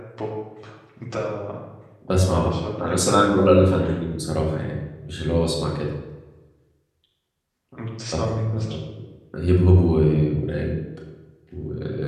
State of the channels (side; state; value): both; identical; correlation 1.00